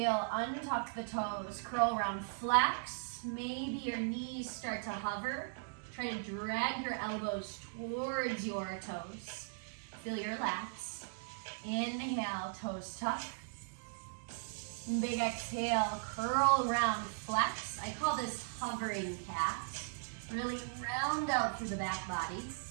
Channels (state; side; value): silent; left; digital silence